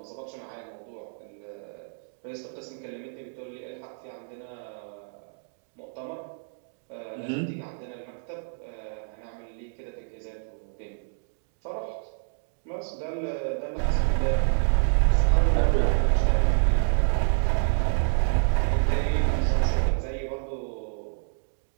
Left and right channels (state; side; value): silent; left; digital silence